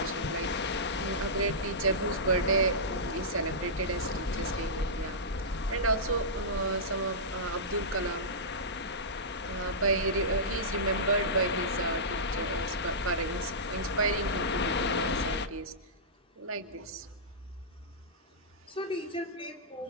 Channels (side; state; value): both; normal; correlation -0.16